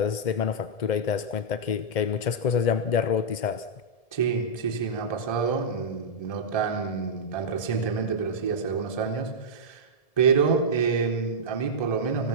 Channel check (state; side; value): late; right; 1.7 ms